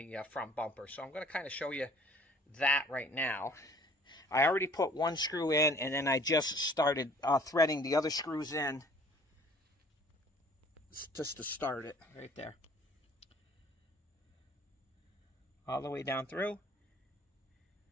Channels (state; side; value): normal; both; correlation 0.53